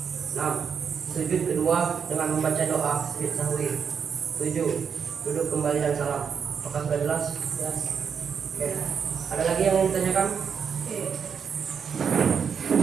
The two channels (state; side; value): quieter; left; 6.8 dB